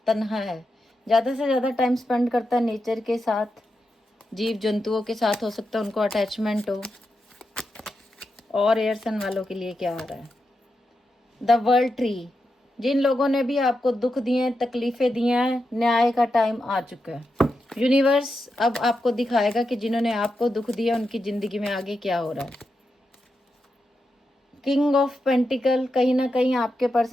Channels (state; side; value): normal; both; correlation 0.87